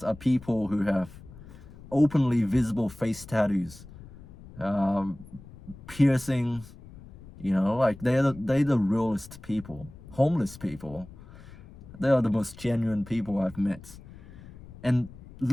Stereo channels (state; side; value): noise; left; rumble, 18 dB below the sound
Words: are people who have openly visible face tattoos, piercings, they're the realest people. Homeless people, they are the most genuine people I've met. And